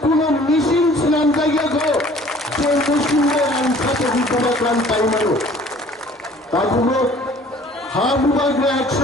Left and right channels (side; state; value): both; normal; correlation 0.52